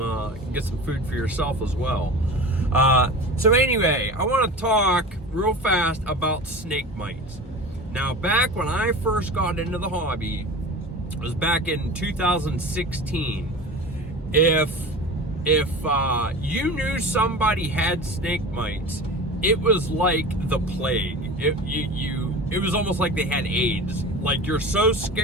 food for yourself as well? So anyway, I want to talk real fast about snake mites. Now, back when I first got into the hobby, it was back in 2016. If you knew somebody had snake mites, it was like the plague. It was almost like they had AIDS. Like, you're so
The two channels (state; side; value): normal; both; correlation 0.33